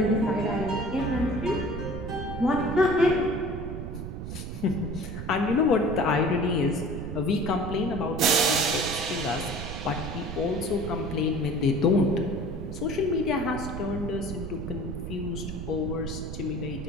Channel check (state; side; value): noise; right; rumble, 7 dB below the sound